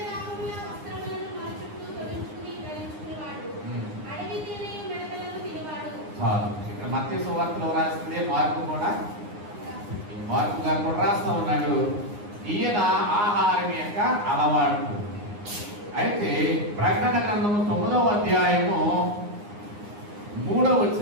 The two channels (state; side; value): late; left; 9.7 ms